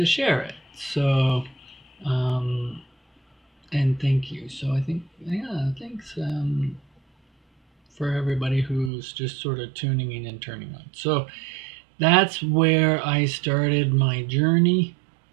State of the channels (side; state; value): left; drops out; at 8.9 s